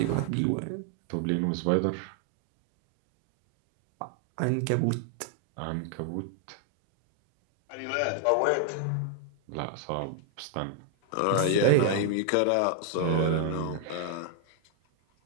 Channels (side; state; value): both; different; correlation 0.00